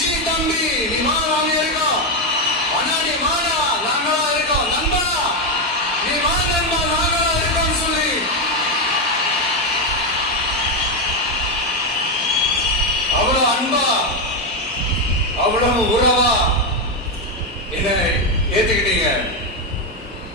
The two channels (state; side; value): normal; both; correlation 0.07